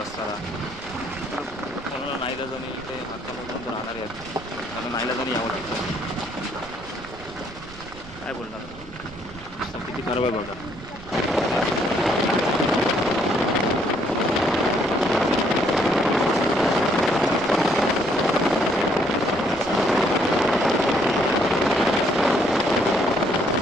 रस्त्याला. कोणाला नाईलाजाने इथे हातामधून राहणारे आहेत, त्यांना नाईलाजाने यावं लागतं. काय बोलणार, रस्ता किती खराब आहे बघा.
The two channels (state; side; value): noise; right; rumble, 18 dB below the sound